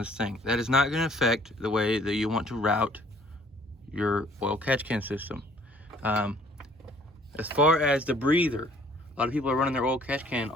thing. That is not going to affect the way that you want to route your oil catch can system. As far as the breather, a lot of people are running their oil catch can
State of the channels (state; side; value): normal; both; correlation 0.58